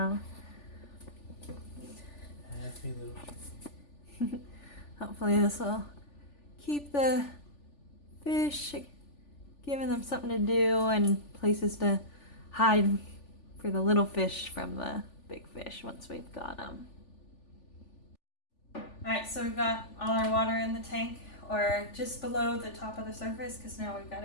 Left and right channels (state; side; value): late; right; 3.4 ms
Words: Happy little tree. Hopefully this will keep the fish, giving them something to do and places to hide for the little fish from the big fish once we've got them. Alright, so we've got all our water in the tank, or just below the top of the surface, because now we've got